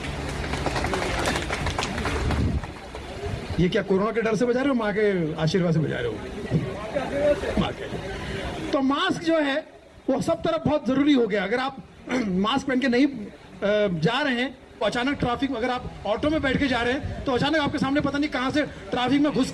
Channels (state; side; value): identical; both; correlation 1.00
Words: ये क्या कोरोना के डर से बजा रहे हो, माँ के आशीर्वाद से बजा रहे हो? माँ के। तो मास्क जो है वो सब तरफ बहुत जरूरी हो गया। अगर आप मास्क पहन के नहीं जा रहे हैं, अचानक ट्रैफिक में, अगर आप ऑटो में बैठ के जा रहे हैं तो अचानक आपके सामने पता नहीं कहां से ट्रैफिक में घुस